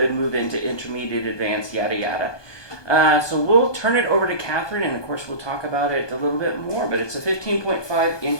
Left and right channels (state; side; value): late; right; 1.2 ms